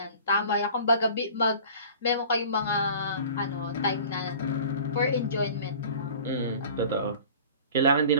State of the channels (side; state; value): both; inverted; correlation -0.44